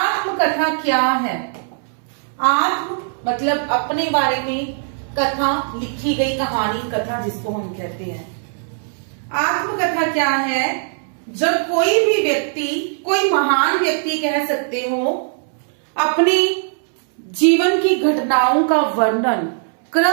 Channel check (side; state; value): left; silent; 66 dB below the other